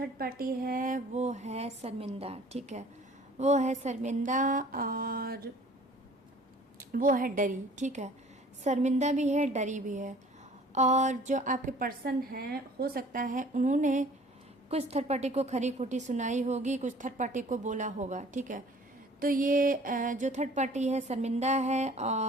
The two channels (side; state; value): both; normal; correlation 0.51